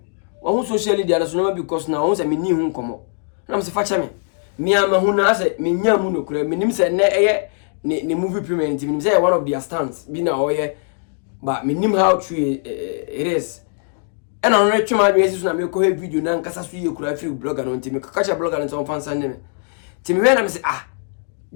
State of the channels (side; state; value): right; silent; 62 dB below the other